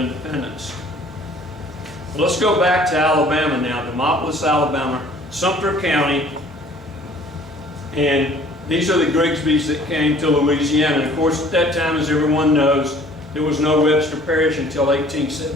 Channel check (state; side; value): normal; both; correlation 0.53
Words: Well, let's go back to Alabama now, Demopolis, Alabama, Sumter County. And these are the Grigsbys that came to Louisiana. And of course, at that time, as everyone knows, there was no Webster Parish until